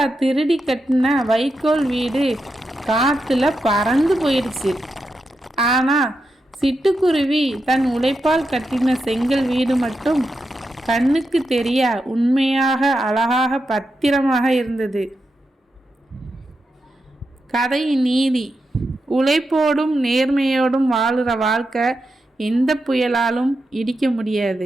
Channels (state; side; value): normal; both; correlation 0.87